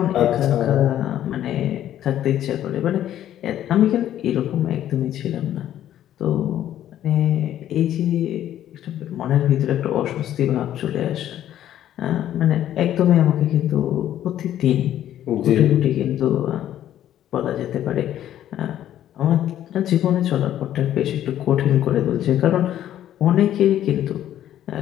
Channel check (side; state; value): right; quieter; 11.7 dB